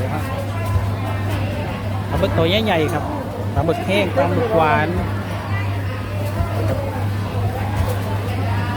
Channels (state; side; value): identical; both; correlation 1.00